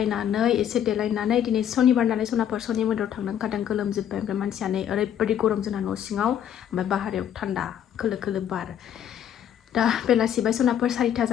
एसे देलायनानै दिनै सनिबार नालाय सनाफोर सनि मन्दिराव थांनो ओंखारदों गोलोमजोब्बाय ओमफ्राय मानसियानो ओरैबायदि गरम जोंना न' सिङाव ओमफ्राय बाहेरायाव थान्दा खोलो खोलो बार दा बेलासि बाय सनाफोर 4टा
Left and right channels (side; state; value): right; quieter; 9.9 dB